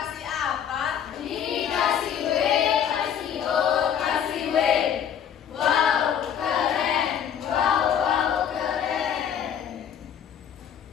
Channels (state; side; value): quieter; right; 8.7 dB